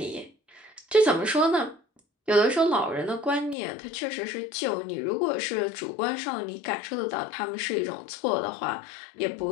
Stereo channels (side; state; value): right; drops out; at 3.6 s